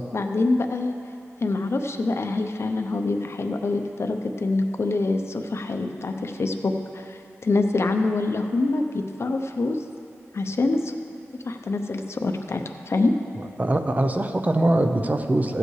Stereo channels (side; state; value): both; normal; correlation 0.92